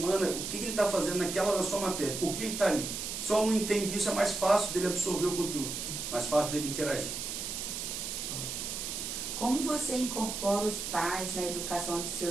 o que ele está fazendo na sua matéria, por que ele está ali. Se o aluno entende isso, é mais fácil dele absorver o conteúdo, mais fácil dele interagir. Como você incorpora os pais na educação de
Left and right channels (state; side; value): noise; right; hiss, 4 dB below the sound